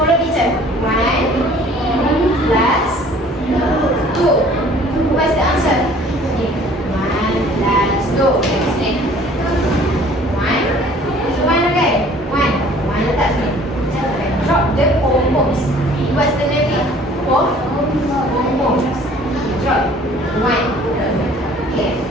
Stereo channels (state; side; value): normal; both; correlation 0.52